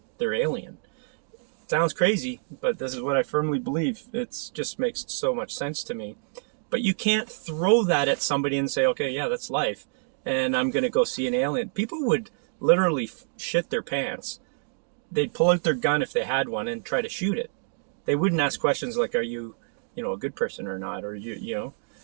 alien. Sounds crazy, but this is what I firmly believe. It just makes so much sense to me. But you can't throw that at somebody and say, okay, yeah, that's life, and I'm going to go see an alien. People would literally shit their pants. They'd pull out their gun if they had one and try to shoot it. They wouldn't ask questions like, are you, a good person or not? Or you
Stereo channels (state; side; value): silent; left; digital silence